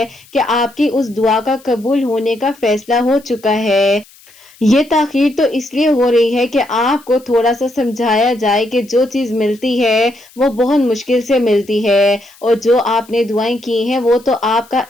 کہ آپ کی اس دعا کا قبول ہونے کا فیصلہ ہو چکا ہے۔ یہ تاخیر تو اس لیے ہو رہی ہے کہ آپ کو تھوڑا سا سمجھایا جائے کہ جو چیز ملتی ہے وہ بہت مشکل سے ملتی ہے، اور جو آپ نے دعائیں کی ہیں وہ تو آپ کا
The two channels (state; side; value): noise; left; hiss, 26 dB below the sound